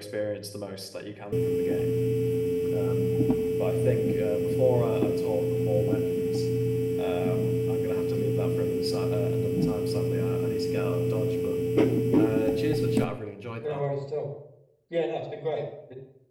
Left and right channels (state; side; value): identical; both; correlation 1.00